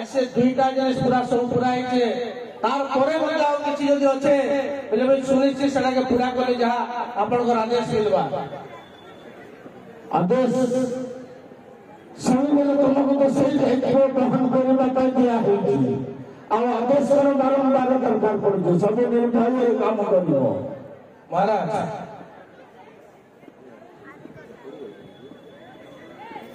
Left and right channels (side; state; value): both; identical; correlation 1.00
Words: से 2टा जिनिस पूरा सब पूरा है तार परे मते आउ किछि जदि अछि बेले भाई सुनिश्चित सेटा के पूरा करे जहा आपनकर आदेश मिलबा आदेश सब बेले तुमको तो सही दायित्व ग्रहण करबा पाई दिया होई आ आदेश कर बारंबार दरकार पड़े सब निर्भय काम करियो महाराज